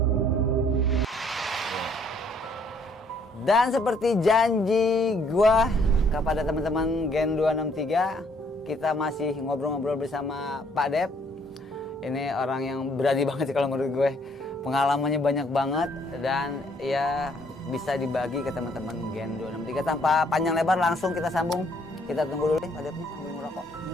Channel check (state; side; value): normal; both; correlation 0.65